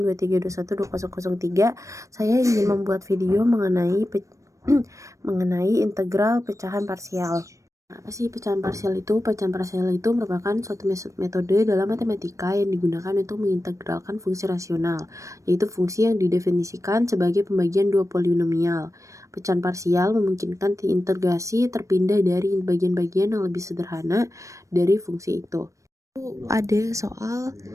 2321203. Saya ingin membuat video mengenai mengenai integral pecahan parsial. Apa sih pecahan parsial itu? Pecahan parsial itu merupakan suatu metode dalam matematika yang digunakan untuk mengintegralkan fungsi rasional, yaitu fungsi yang didefinisikan sebagai pembagian dua polinomial. Pecahan parsial memungkinkan integrasi terpindah dari bagian-bagian yang lebih sederhana dari fungsi itu. Ada soal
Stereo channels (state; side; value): late; left; 0.15 ms